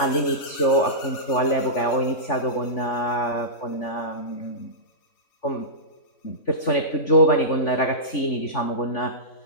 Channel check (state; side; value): late; right; 3.5 ms